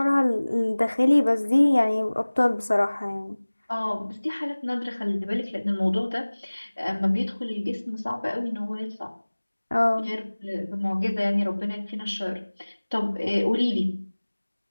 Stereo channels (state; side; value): inverted; both; correlation -1.00